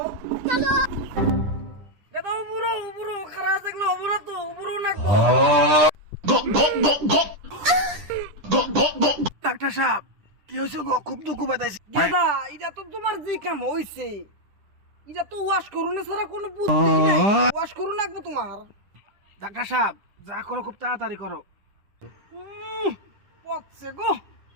গাদা উপরো খারাপ দেখলে উপরো তো উপরো লাগবো। ডাক্তার সাহেব কি হয়েছে গো? খুব দুঃখ পাইছি। গাদা এটা তো তোমার যে কাম হইছে, এটা তো ওয়াশ করুন ছাড়া কোনো বুদ্ধি নাই। ওয়াশ করুন লাগবো তোমার। ডাক্তার সাহেব যা করো খুব তাড়াতাড়ি করো। পচছে গো,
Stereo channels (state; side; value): late; left; 10 ms